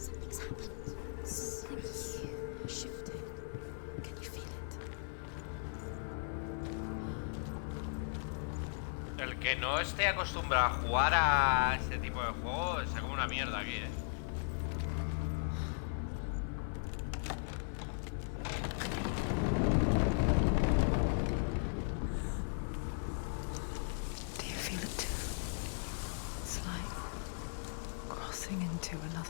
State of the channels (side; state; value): right; silent; 53 dB below the other